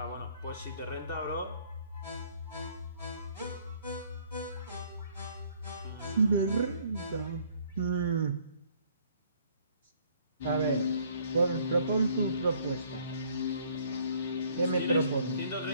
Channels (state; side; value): inverted; both; correlation -0.61